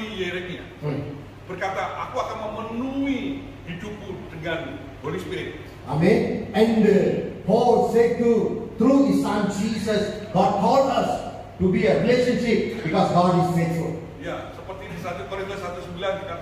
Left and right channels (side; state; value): both; identical; correlation 1.00